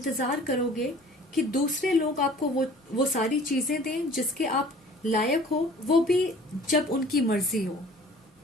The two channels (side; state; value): both; normal; correlation 0.49